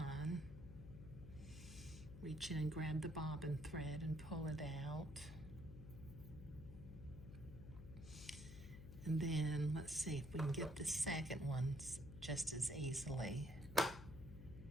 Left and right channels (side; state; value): left; noise; hum, 12 dB below the sound